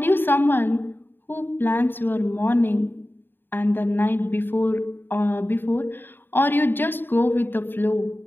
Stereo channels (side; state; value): right; late; 0.096 ms